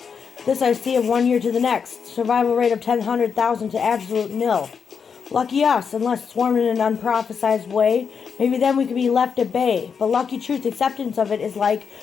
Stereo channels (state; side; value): quieter; right; 6.3 dB